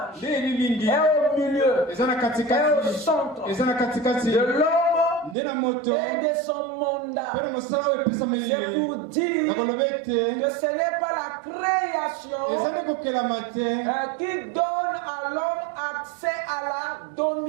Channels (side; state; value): left; drops out; at 5.4 s